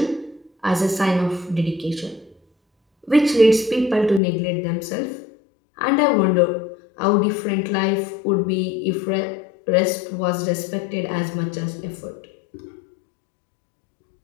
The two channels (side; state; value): right; drops out; at 4.2 s